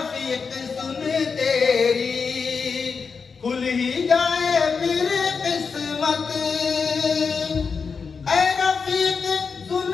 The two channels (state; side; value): quieter; right; 5.4 dB